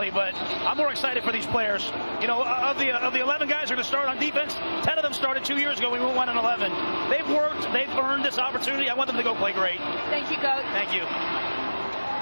but I'm more excited for these players. You know, of the 11 guys who are going to start on defense, 10 of them started 2 years ago. We went 1-11. They've worked. They've earned this opportunity. I want them to go play great. Thank you, Coach. Thank you.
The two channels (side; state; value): both; inverted; correlation -1.00